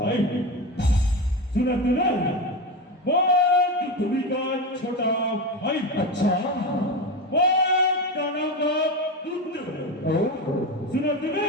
सुना तुम्ही का छोटा भाई। अच्छा दानव का पुत्र सुना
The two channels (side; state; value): both; normal; correlation 0.19